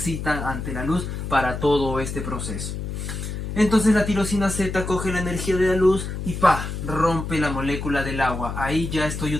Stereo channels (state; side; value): noise; left; hum, 5 dB below the sound